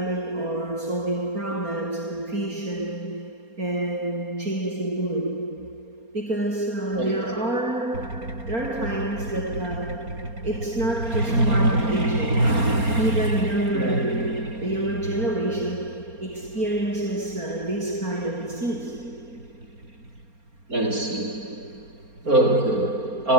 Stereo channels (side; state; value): left; late; 4.3 ms